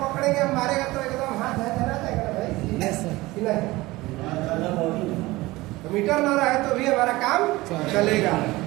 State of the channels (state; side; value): quieter; left; 19.9 dB